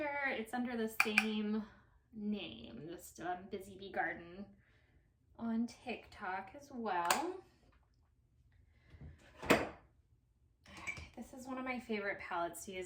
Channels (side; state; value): both; identical; correlation 1.00